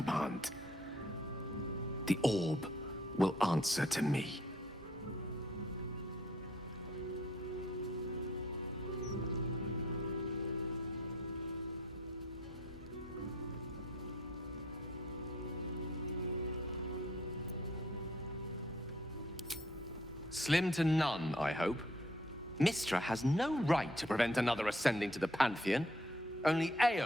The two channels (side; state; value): both; normal; correlation 0.63